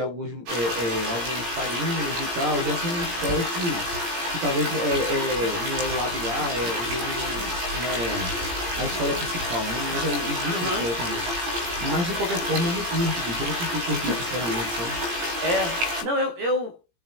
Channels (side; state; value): left; late; 17 ms